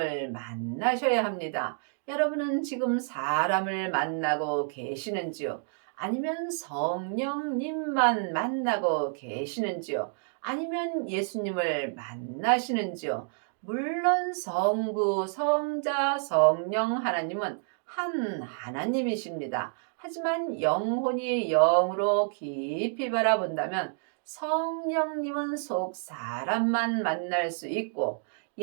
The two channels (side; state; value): left; silent; 58 dB below the other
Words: 만나셔야 합니다. 여러분은 지금 사람을 만나고 계시는지요? 아니면 성령님만 만나고 계시는지요? 아니면 예수님을 만나시는지요? 물론 성부, 성자, 성령 하나님은 한 하나님이십니다. 하지만 영혼이 영으로 깊이 바라본다면 성령님은 속 사람만 만날 수 있고